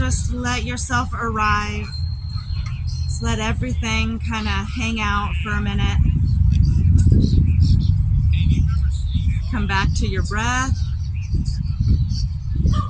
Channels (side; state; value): both; identical; correlation 1.00